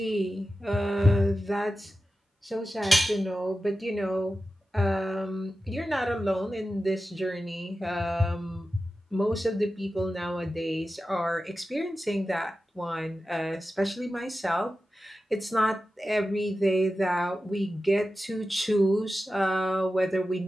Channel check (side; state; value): both; normal; correlation 0.93